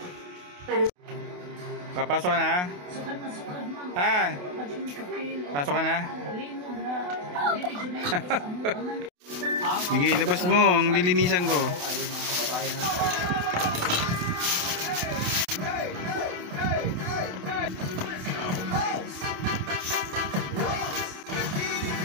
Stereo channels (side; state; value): left; late; 28 ms